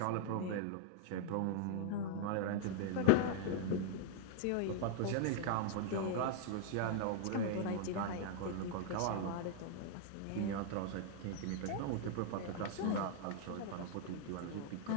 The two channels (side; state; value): both; different; correlation -0.01